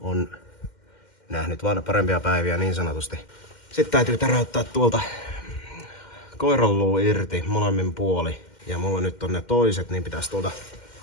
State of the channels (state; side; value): late; right; 2.1 ms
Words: nähnyt vaan parempia päiviä niin sanotusti. Sitten täytyy täräyttää tuolta koiranluu irti molemmin puoli. Ja mulla nyt on ne toiset, niin pitäisi tuolta